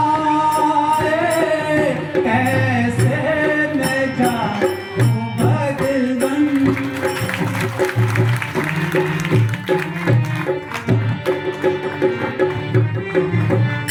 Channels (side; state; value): both; identical; correlation 1.00